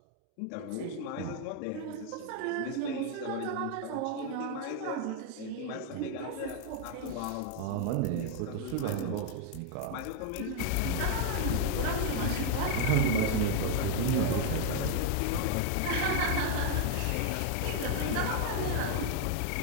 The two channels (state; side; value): different; both; correlation 0.01